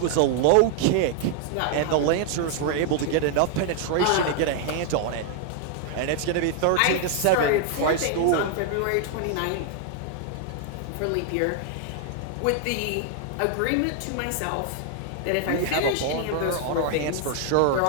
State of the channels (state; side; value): different; both; correlation 0.00